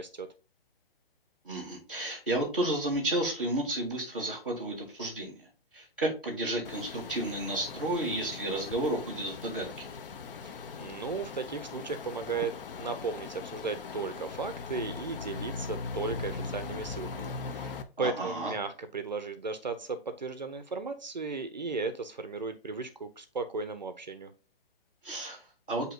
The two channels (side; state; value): both; normal; correlation 0.14